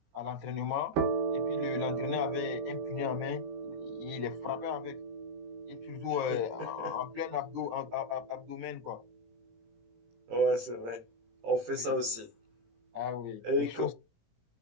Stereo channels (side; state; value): left; late; 18 ms